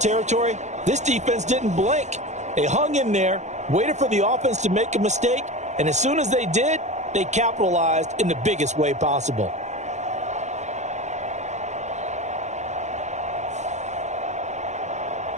This defense didn't blink. They hung in there, waited for the offense to make a mistake, and as soon as they did, they capitalized in the biggest way possible.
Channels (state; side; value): late; left; 0.34 ms